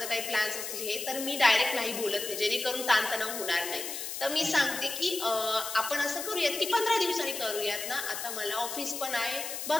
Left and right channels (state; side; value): noise; left; hiss, 6 dB below the sound